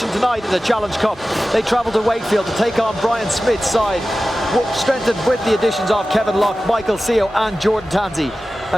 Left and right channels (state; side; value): normal; both; correlation 0.95